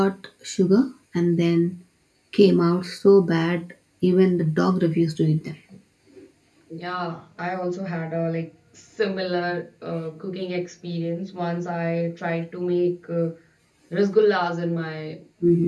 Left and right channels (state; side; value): identical; both; correlation 1.00